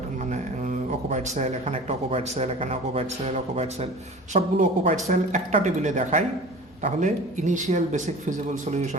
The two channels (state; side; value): normal; both; correlation 0.39